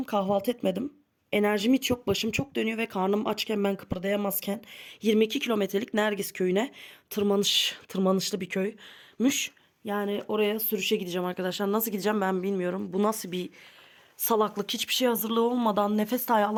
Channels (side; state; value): both; identical; correlation 1.00